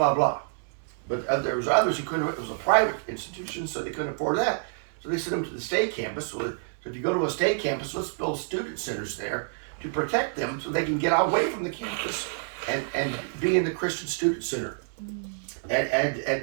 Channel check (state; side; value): silent; left; digital silence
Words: blah. But there was others who couldn't, it was a private institution, so they couldn't afford that. So they sent them to the state campus. So if you go to a state campus, let's build student centers there to protect them so they can get away from the campus and be in the Christian student center